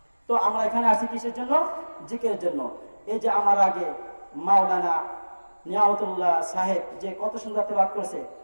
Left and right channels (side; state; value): both; inverted; correlation -1.00